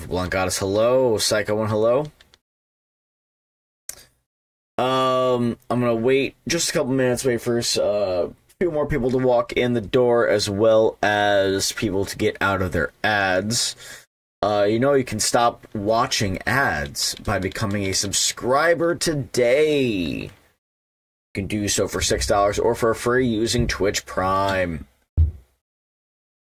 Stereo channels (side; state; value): both; identical; correlation 1.00